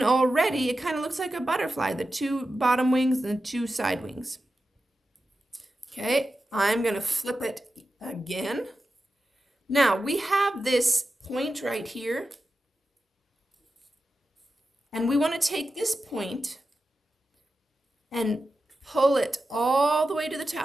already it kind of looks like a butterfly, the 2 bottom wings and the 2 side wings. Okay, I'm going to flip it again. Now we have this point right here. And we want to take this point and pull it all the way to the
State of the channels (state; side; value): normal; both; correlation 0.92